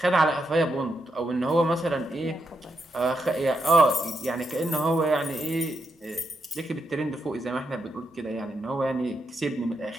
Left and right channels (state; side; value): normal; both; correlation 0.82